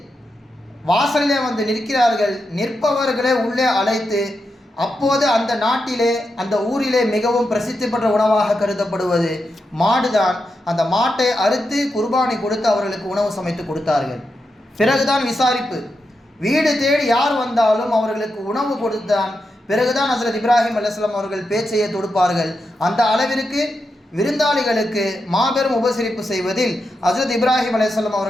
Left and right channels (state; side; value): normal; both; correlation 0.87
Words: வாசலிலே வந்து நிற்கிறார்கள். நிற்பவர்களே உள்ளே அழைத்து, அப்போது அந்த நாட்டிலே அந்த ஊரிலே மிகவும் பிரசித்தி பெற்ற உணவாக கருதப்படுவது மாடுதான். அந்த மாட்டை அறுத்து குர்பானி கொடுத்து அவர்களுக்கு உணவு சமைத்து கொடுத்தார்கள். பிறகுதான் விசாரிப்பு. வீடு தேடி யார் வந்தாலும் அவர்களுக்கு உணவு கொடுத்தான் பிறகுதான் ஹஸ்ரத் இப்ராஹிம் அலைஹிஸ்ஸலாம் அவர்கள் பேச்சையை தொடுப்பார்கள். அந்த அளவிற்கு விருந்தாளிகளுக்கு மாபெரும் உபசரிப்பு செய்வதில் ஹஸ்ரத் இப்ராஹிம் அலைஹிஸ்ஸலாம்